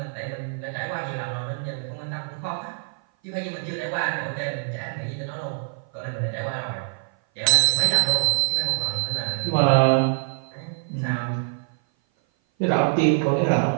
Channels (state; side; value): silent; left; 57 dB below the other